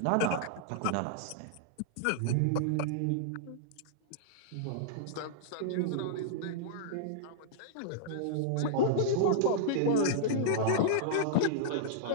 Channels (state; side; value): different; both; correlation -0.02